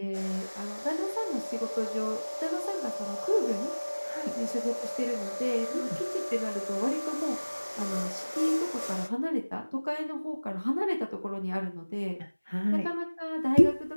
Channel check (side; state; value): both; inverted; correlation -1.00